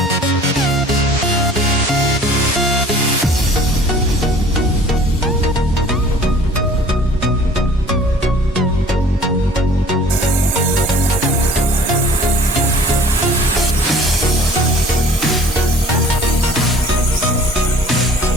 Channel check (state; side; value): normal; both; correlation 0.49